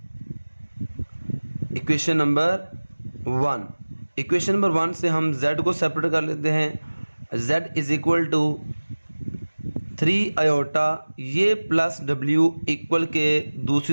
equation number 1। Equation number 1 से हम Z को सेपरेट कर लेते हैं। Z is equal to 3 iota, ये प्लस W इक्वल के दूसरी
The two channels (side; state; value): both; inverted; correlation -1.00